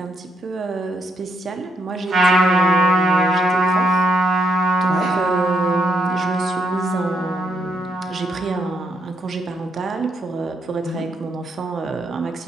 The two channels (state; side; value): normal; both; correlation 0.77